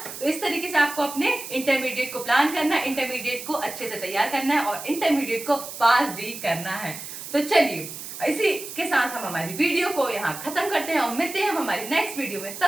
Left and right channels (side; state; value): right; noise; hiss, 10 dB below the sound